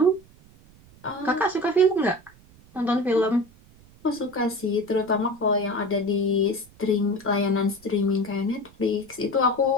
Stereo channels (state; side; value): noise; right; rumble, 26 dB below the sound